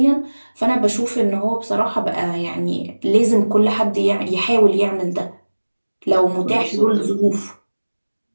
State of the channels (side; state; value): both; inverted; correlation -1.00